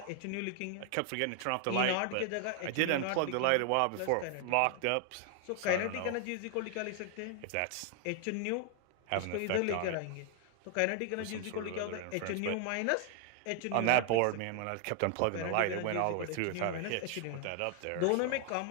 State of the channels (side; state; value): both; different; correlation 0.00